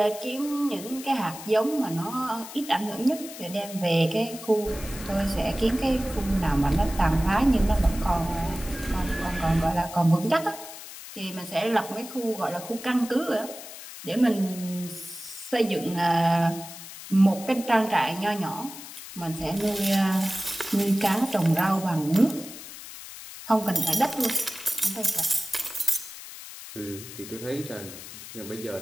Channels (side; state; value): left; noise; hiss, 13 dB below the sound